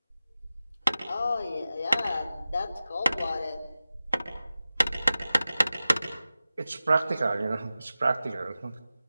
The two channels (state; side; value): inverted; both; correlation -0.95